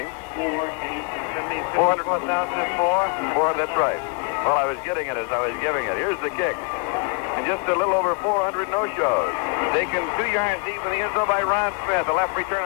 400,004? That's right. Well, I was getting it as I was giving it. Here's the kick. And just a little over 400 no-shows. Taken 3 yards deep in the end zone by Ron Smith. The left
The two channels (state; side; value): quieter; right; 33.3 dB